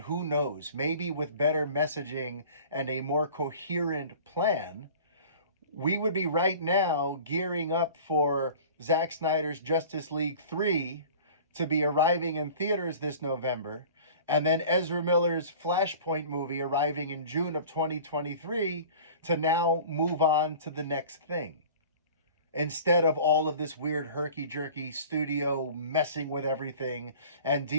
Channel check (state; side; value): inverted; both; correlation -0.43